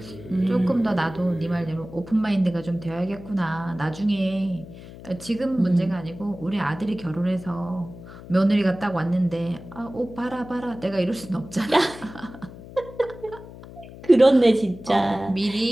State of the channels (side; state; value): left; noise; hum, 16 dB below the sound